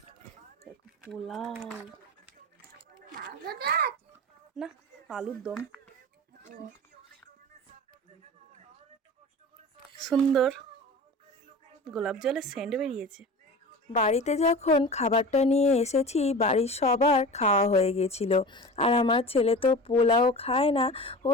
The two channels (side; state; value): both; normal; correlation 0.34